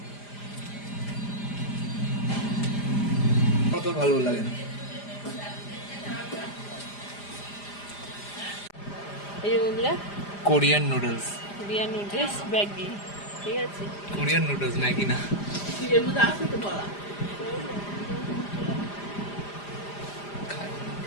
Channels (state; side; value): late; right; 5.0 ms